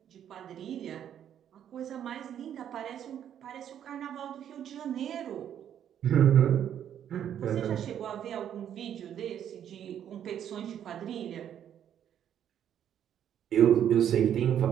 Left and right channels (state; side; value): quieter; left; 9.8 dB